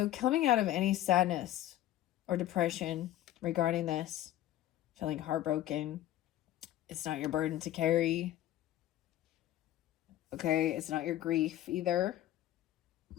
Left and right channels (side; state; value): right; quieter; 13.4 dB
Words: coming out of any sadness or depression regarding this, feeling heartbroken, it's not your burden to carry. Okay, it's not your grief either.